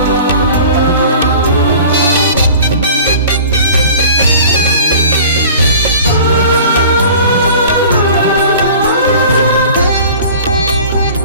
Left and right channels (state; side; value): inverted; both; correlation -0.43